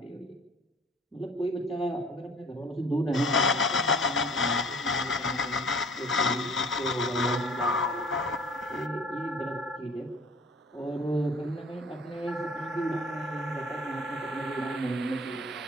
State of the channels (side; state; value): both; normal; correlation 0.49